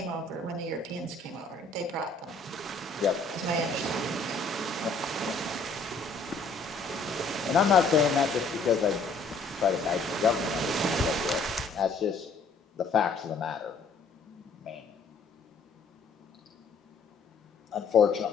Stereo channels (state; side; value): quieter; right; 3.8 dB